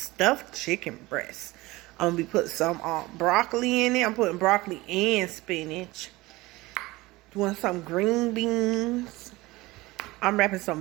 chicken breast. I'm going to be putting some broccoli in it. I'm putting broccoli and spinach. Doing some green beans. I'm wrapping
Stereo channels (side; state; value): left; quieter; 20.3 dB